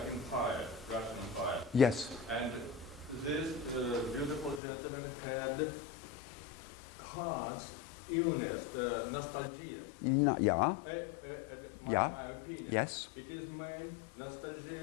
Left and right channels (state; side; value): drops out; right; at 4.6 s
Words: Russian Empire. Yes. And this beautiful gentleman had heart illness, nostalgia. Yeah. Yeah. My opinion. Yes. It is main